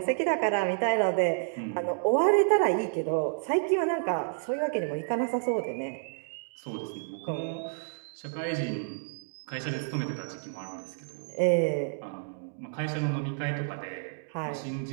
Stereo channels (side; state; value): left; silent; digital silence